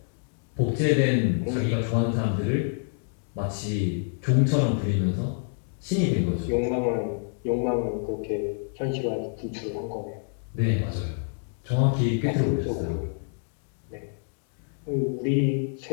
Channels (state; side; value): silent; right; 60 dB below the other